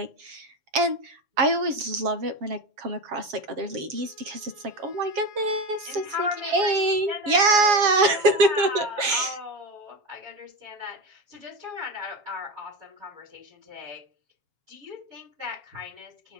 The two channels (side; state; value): left; late; 7.2 ms